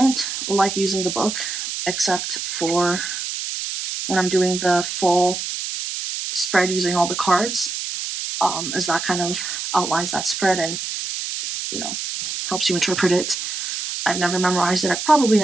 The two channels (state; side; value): noise; right; hiss, 5 dB below the sound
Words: like using the book except for when I'm doing the full spread using all the cards, as that kind of outlines that spread and, you know, helps you interpret it. I've never memorized it. I probably